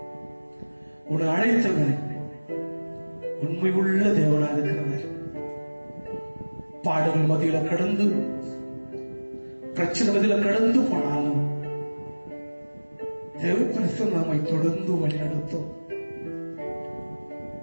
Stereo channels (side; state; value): both; inverted; correlation -1.00